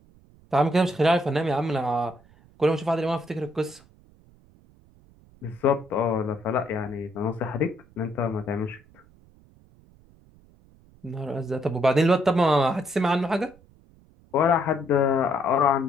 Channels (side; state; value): right; noise; rumble, 28 dB below the sound